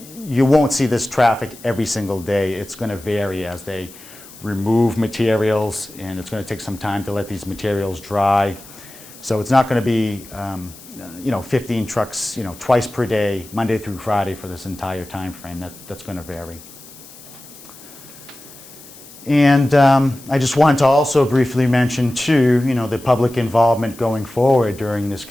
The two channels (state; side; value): noise; left; hiss, 19 dB below the sound